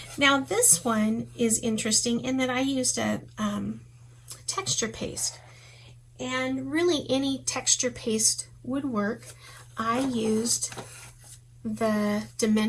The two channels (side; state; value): both; identical; correlation 1.00